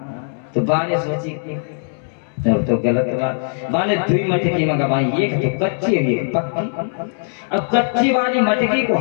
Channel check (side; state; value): right; silent; 66 dB below the other